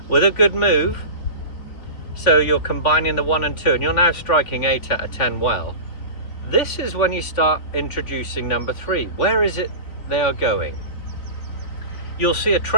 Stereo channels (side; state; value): right; late; 3.5 ms